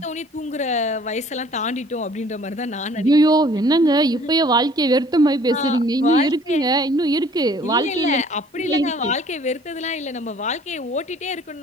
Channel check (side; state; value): both; normal; correlation 0.55